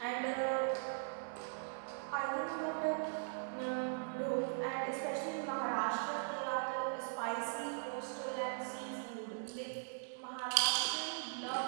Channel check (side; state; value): left; silent; digital silence